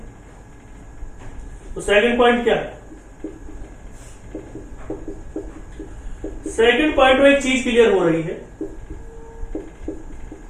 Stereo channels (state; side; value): identical; both; correlation 1.00